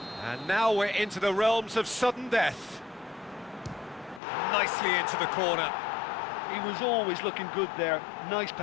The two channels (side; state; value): right; drops out; at 4.2 s